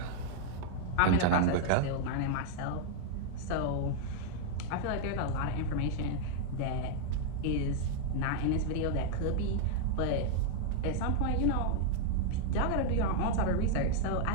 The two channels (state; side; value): different; both; correlation -0.01